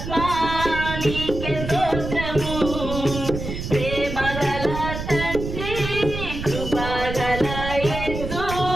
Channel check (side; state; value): right; noise; rumble, 6 dB below the sound